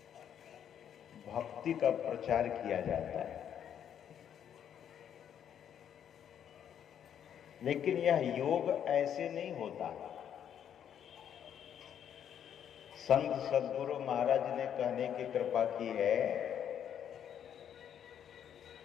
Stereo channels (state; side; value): quieter; right; 9.2 dB